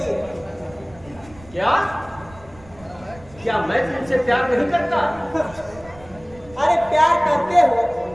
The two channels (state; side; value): noise; right; rumble, 22 dB below the sound